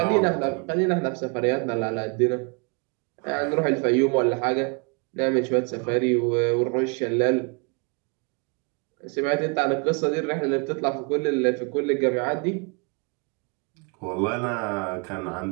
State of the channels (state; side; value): quieter; left; 33.4 dB